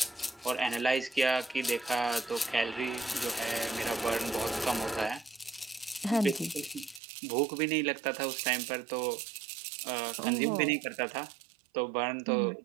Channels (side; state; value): left; drops out; at 7.0 s